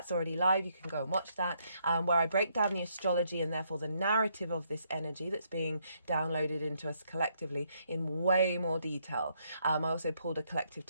already live. You can go and watch that, where I break down the astrology and therefore the narrative of this energy that's being downloaded into us collectively in way more detail. I also pulled a collective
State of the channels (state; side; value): inverted; both; correlation -0.73